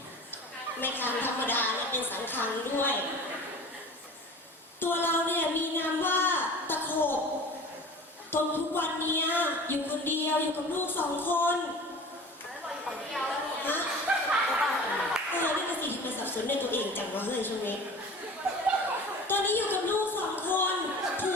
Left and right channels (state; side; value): normal; both; correlation 0.40